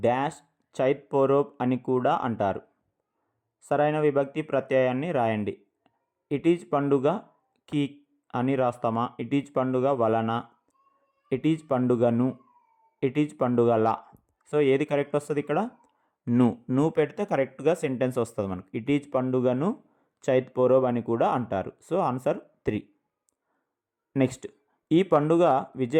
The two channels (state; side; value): identical; both; correlation 1.00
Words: డాష్ చైత్ పోరోబ్ అని కూడా అంటారు. సరైన విభక్తి ప్రత్యయాన్ని రాయండి. ఇట్ ఈజ్ పండుగ కి అని రాస్తామా, ఇట్ ఈజ్ పండుగ వలన, ఇట్ ఈజ్ పండుగను, ఇట్ ఈజ్ పండుగల. సో ఏది కరెక్ట్ వస్తుంది ఇక్కడ? ను పెడితే కరెక్ట్గా సెంటెన్స్ వస్తుంది మనకు. ఇట్ ఈజ్ పండుగను చైత్ పోరోబ్ అని కూడా అంటారు. So answer 3. నెక్స్ట్, ఈ పండుగ